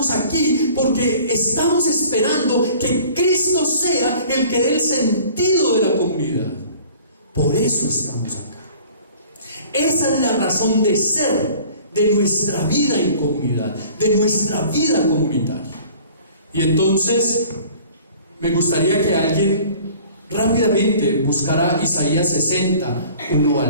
aquí porque estamos esperando que Cristo sea el que dé el sentido de la comunidad. Por eso estamos acá. Esa es la razón de ser de nuestra vida en comunidad, de nuestra vida comunitaria. Y entonces me gustaría que alguien rápidamente buscara Isaías 60, 1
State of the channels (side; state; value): both; inverted; correlation -0.48